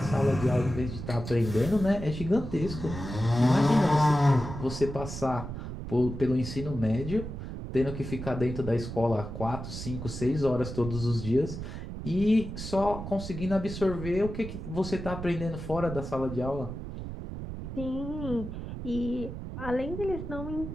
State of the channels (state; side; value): noise; right; rumble, 8 dB below the sound